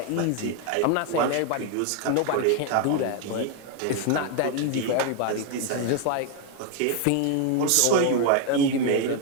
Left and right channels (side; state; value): both; different; correlation 0.01